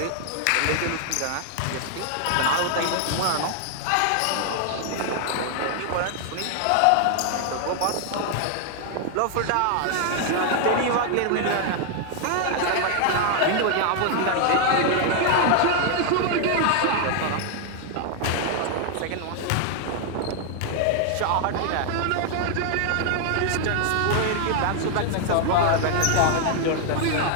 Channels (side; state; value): both; different; correlation 0.00